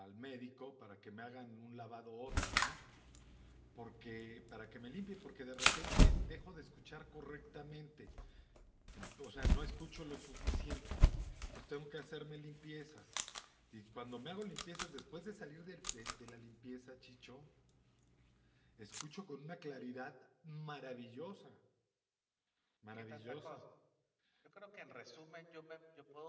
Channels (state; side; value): identical; both; correlation 1.00